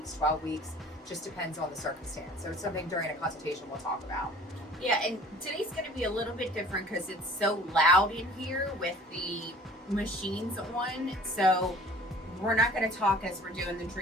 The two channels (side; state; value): both; normal; correlation 0.48